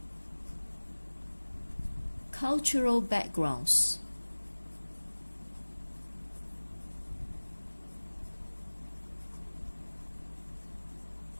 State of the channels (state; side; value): inverted; both; correlation -1.00